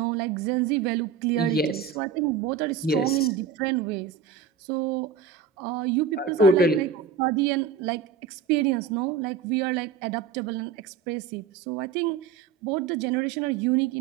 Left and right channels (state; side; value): quieter; left; 6.8 dB